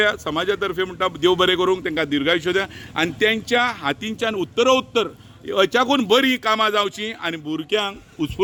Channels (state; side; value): identical; both; correlation 1.00